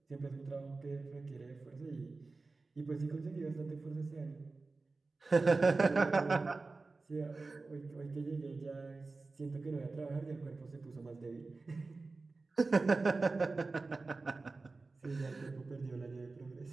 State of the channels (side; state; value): left; quieter; 3.7 dB